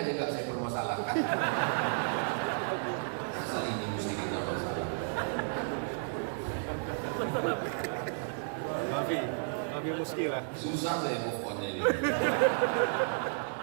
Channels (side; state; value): left; silent; digital silence